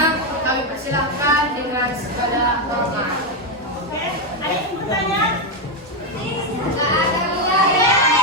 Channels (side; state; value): both; normal; correlation 0.05